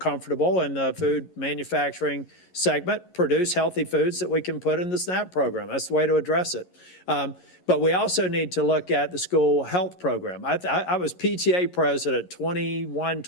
in the food manufacturing segment, produce healthy foods that we can put in the SNAP program. That's the way to address it. But we also need to look at the school health program. I was PTA president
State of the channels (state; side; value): late; right; 11 ms